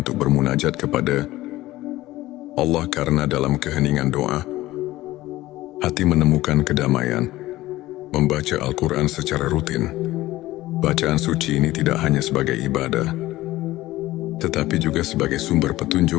bermunajat kepada Allah, karena dalam keheningan doa, hati menemukan kedamaian. Membaca Al-Quran secara rutin. Bacaan suci ini tidak hanya sebagai ibadah, tetapi juga sebagai sumber petunjuk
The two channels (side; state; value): right; quieter; 16.9 dB